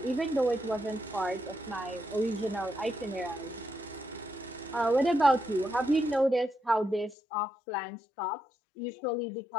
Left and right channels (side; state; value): right; drops out; at 7.2 s